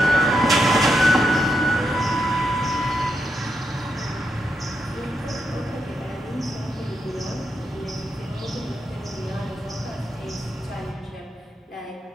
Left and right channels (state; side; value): normal; both; correlation 0.83